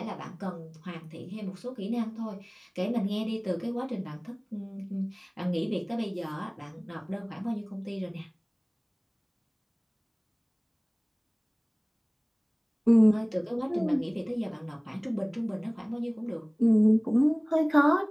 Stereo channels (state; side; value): identical; both; correlation 1.00